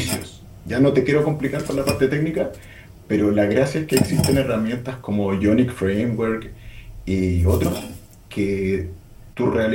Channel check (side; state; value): both; identical; correlation 1.00